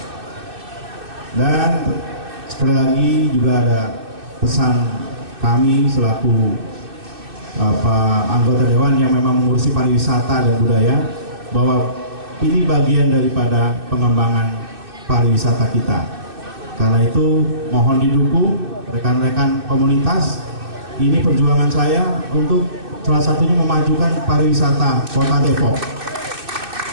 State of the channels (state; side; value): late; left; 2.6 ms